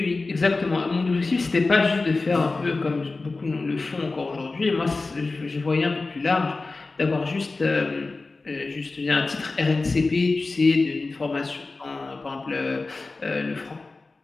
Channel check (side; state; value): right; quieter; 3.6 dB